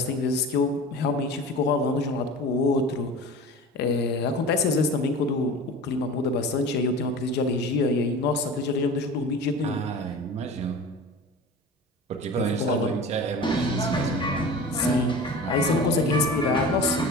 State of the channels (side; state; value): both; normal; correlation 0.35